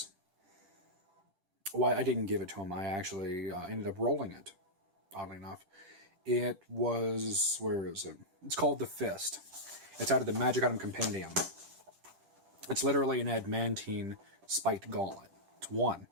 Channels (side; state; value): left; late; 10 ms